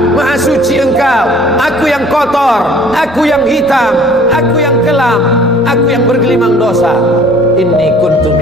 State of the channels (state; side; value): normal; both; correlation 0.52